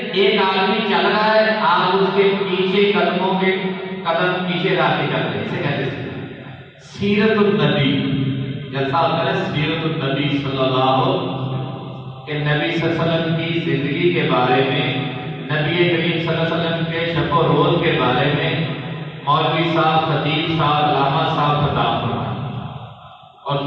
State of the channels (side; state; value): both; identical; correlation 1.00